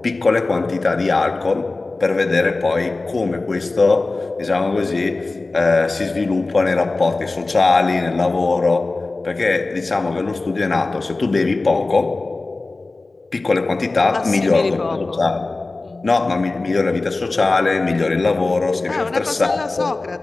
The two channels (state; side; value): quieter; right; 3.3 dB